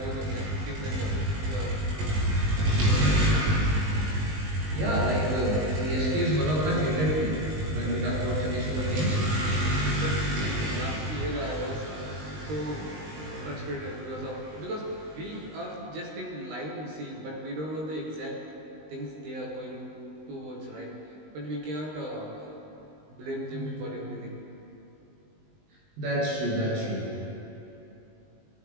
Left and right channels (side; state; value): left; late; 19 ms